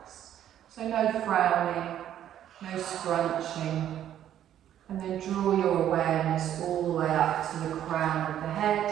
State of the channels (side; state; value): left; quieter; 10.9 dB